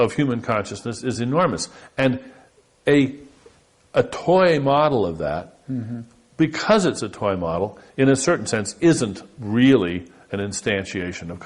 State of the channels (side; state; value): both; identical; correlation 1.00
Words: human consciousness is enormous. And a toy model of that, because it's a toy model, in a certain sense, isn't really an instantiation of